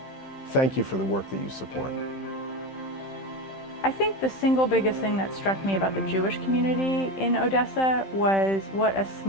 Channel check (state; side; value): late; right; 15 ms